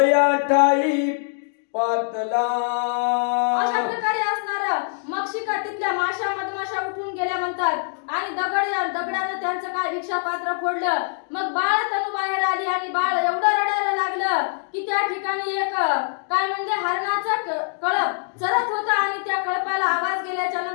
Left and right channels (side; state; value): right; silent; digital silence